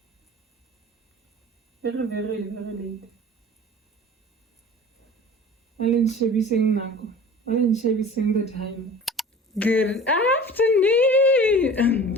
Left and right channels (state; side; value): normal; both; correlation 0.41